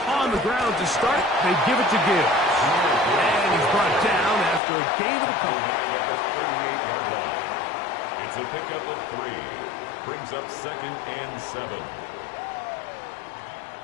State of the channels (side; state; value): right; drops out; at 4.6 s